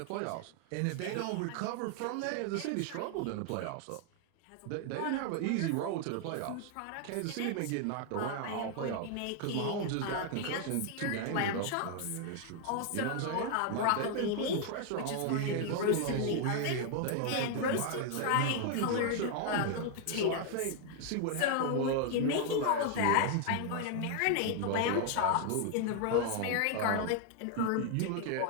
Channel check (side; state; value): both; different; correlation 0.00